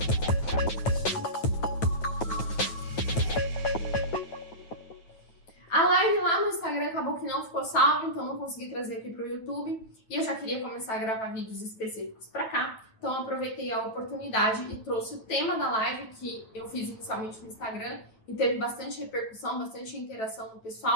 A live lá no Instagram acabou que não ficou salva, então não consegui trazer aqui para o YouTube. E eu já queria começar a gravar vídeos específicos para cá. Então eu aproveitei a oportunidade e trouxe o tema da live que eu fiz inicialmente no Instagram e teve bastante repercussão, bastante interação do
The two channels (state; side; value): late; right; 9.2 ms